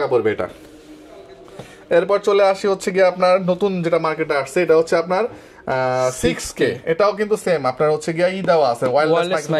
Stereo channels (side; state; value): both; identical; correlation 1.00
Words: পড়বে এটা। এরপর চলে আসি হচ্ছে গিয়ে আপনার নতুন যেটা মার্কেটে আসছে, এটা হচ্ছে আপনার 6K। এটাও কিন্তু সেম আপনার হচ্ছে গিয়ে দেওয়া আছে, ওয়্যারলেস